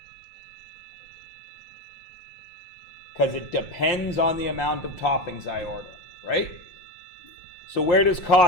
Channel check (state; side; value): late; right; 5.7 ms